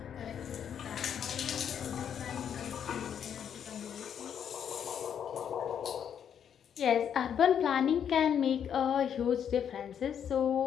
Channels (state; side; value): quieter; right; 8.5 dB